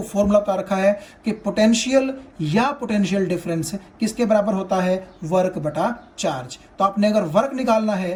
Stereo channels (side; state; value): both; identical; correlation 1.00